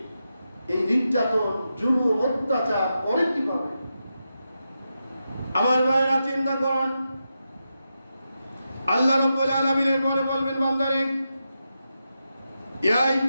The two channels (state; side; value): inverted; both; correlation -0.88